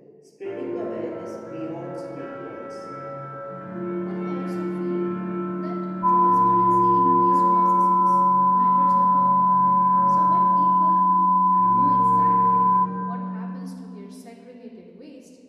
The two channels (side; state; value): both; identical; correlation 1.00